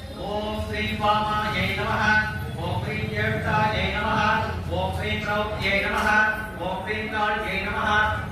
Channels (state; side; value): identical; both; correlation 1.00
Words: ஓம் ஸ்ரீ பாமாயை நமஹ, ஓம் ஸ்ரீ ஜேஷ்டாயை நமஹ, ஓம் ஸ்ரீ த்ரௌப்தியை நமஹ, ஓம் ஸ்ரீ காளியை நமஹ,